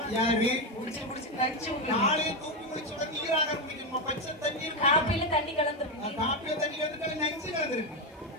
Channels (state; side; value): normal; both; correlation 0.09